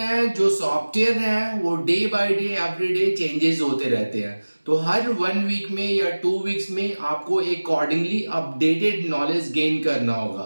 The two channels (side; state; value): both; inverted; correlation -1.00